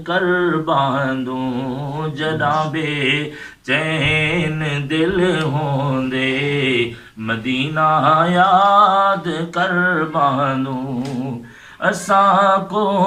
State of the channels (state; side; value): identical; both; correlation 1.00